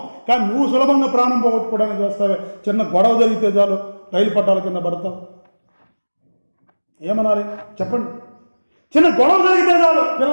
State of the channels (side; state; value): both; inverted; correlation -1.00